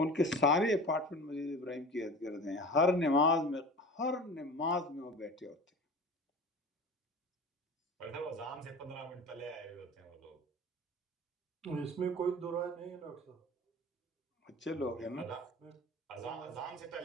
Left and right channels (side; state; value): both; normal; correlation 0.37